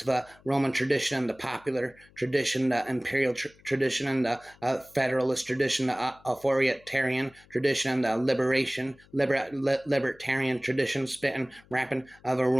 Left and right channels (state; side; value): noise; left; hum, 28 dB below the sound